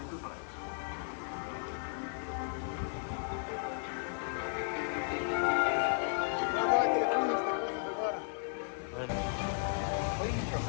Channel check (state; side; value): silent; right; digital silence